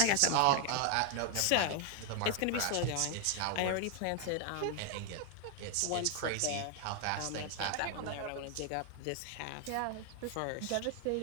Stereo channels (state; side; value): different; both; correlation 0.00